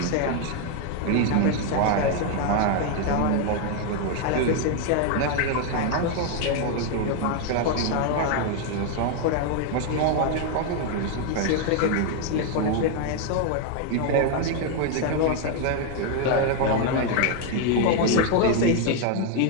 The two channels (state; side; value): different; both; correlation 0.01